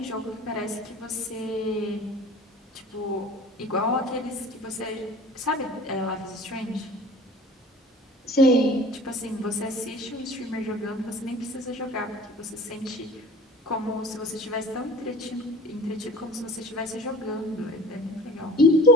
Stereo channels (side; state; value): both; normal; correlation 0.44